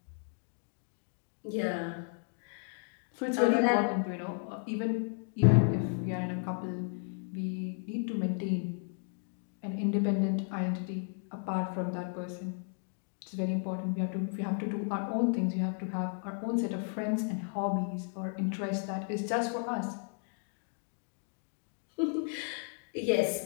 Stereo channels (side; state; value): right; silent; 55 dB below the other